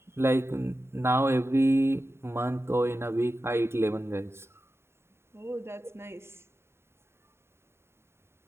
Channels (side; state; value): left; late; 0.12 ms